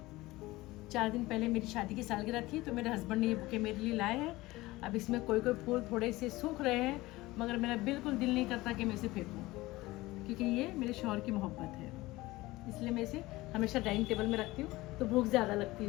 4 दिन पहले मेरी शादी की सालगिरह थी, तो मेरे हस्बैंड ने ये बुके मेरे लिए लाए हैं। अब इसमें कोई फूल थोड़े से सूख रहे हैं, मगर मेरा बिल्कुल दिल नहीं करता कि मैं इसे फेंकूं, क्योंकि ये मेरे शौहर की मोहब्बत है। इसलिए मैं इसे हमेशा डाइनिंग टेबल में रखती हूँ, तो भूख ज़्यादा लगती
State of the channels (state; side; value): quieter; right; 19.4 dB